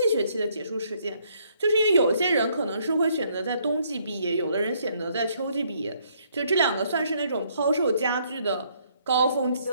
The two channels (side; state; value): both; inverted; correlation -0.68